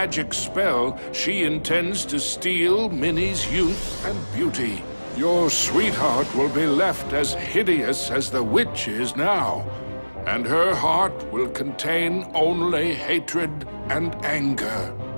spell, she intends to steal Minnie's youth and beauty. Your sweetheart will be left as hideous as the witch is now, and her heart will contain only hatred and anger.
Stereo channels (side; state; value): both; inverted; correlation -1.00